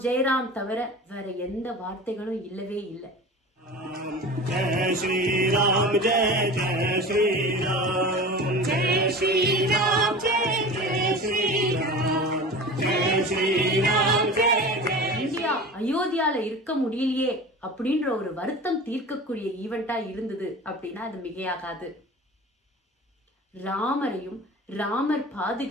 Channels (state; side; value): normal; both; correlation 0.36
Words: ஜெயராம் தவிர வேற எந்த வார்த்தைகளும் இல்லவே இல்லை. ஜெய் ஸ்ரீராம் ஜெய் ஜெய் ஸ்ரீராம் ஜெய் ஸ்ரீராம் ஜெய் ஜெய் ஸ்ரீராம் ஜெய் ஸ்ரீராம் ஜெய் இந்தியா அயோத்தியால இருக்க முடியலையே அப்படின்ற ஒரு வருத்தம் தீர்க்கக்கூடிய ஈவெண்டா இருந்தது அப்படின்னா அது மிகையாகாது. ராமரையும் ராமர்